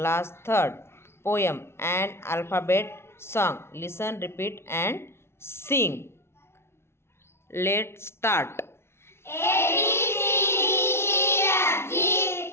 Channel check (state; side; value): late; right; 0.12 ms